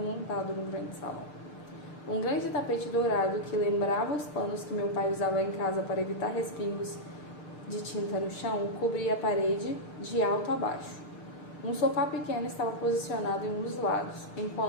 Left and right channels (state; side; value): late; right; 6.7 ms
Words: num grande salão. Um grande tapete dourado que lembrava os panos que meu pai usava em casa para evitar respingos de tinta no chão cobria a parede de alto a baixo. Um sofá pequeno estava posicionado em um dos lados,